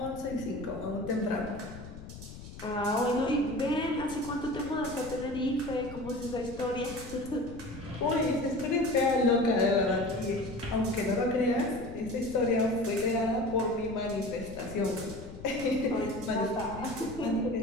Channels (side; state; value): left; noise; rumble, 13 dB below the sound